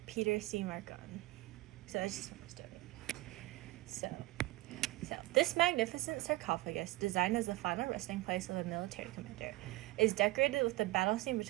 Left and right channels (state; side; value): quieter; left; 19.2 dB